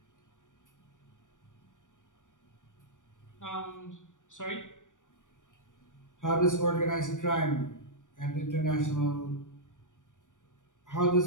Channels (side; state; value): right; late; 0.87 ms